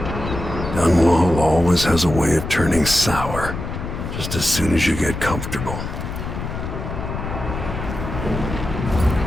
Dunwall always has a way of turning sour, just as soon as you get comfortable.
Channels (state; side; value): noise; left; rumble, 6 dB below the sound